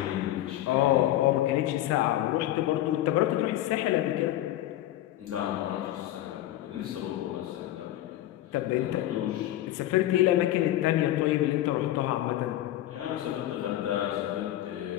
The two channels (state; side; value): quieter; right; 13.9 dB